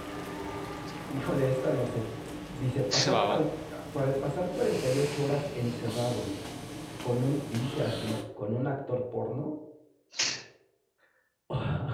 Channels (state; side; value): identical; both; correlation 1.00